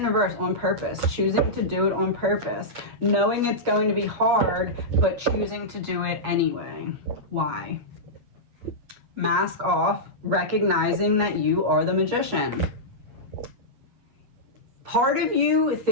in reverse, on purpose, choosing to do it on purpose, knowing it's going to be hard, but choosing to do it anyway. Why? Mask off, recognizing that you are the magician. Part of you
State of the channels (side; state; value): left; late; 8.3 ms